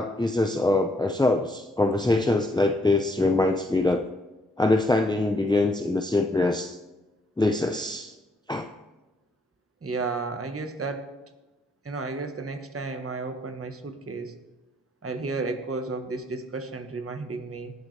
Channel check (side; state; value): both; normal; correlation 0.71